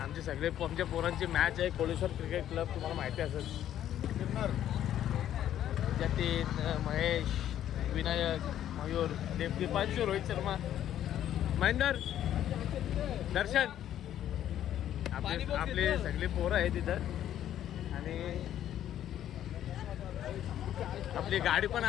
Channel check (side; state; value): right; quieter; 11.3 dB